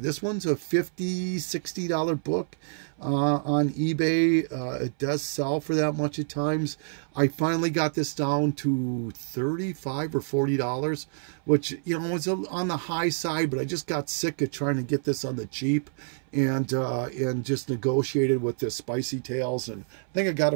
This one's a $50, $60 book on eBay. It does sell for that much at times. I finally got this down to $35 or $40, which, you know, was on the high side, but I just got sick of trying to get this on the cheap, and just negotiated with this Spicy Tales, and I think I got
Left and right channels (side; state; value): left; silent; 60 dB below the other